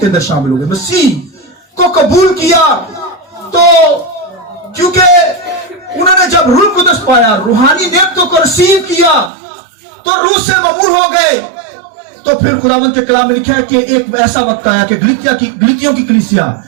अंदर शामिल हो गए, मसीह को कबूल किया। तो क्योंकि उन्होंने जब रूह कुदस पाया, रूहानी नेमतों को रिसीव किया, तो रूह से ममूर हो गए। तो फिर खुदावंद के कलाम में लिखा है कि एक ऐसा वक्त आया कि गलीतियों की कलीसिया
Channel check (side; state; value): left; drops out; at 9.3 s